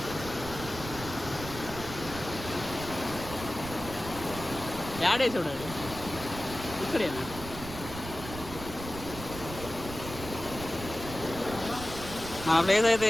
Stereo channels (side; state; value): right; noise; rumble, 10 dB below the sound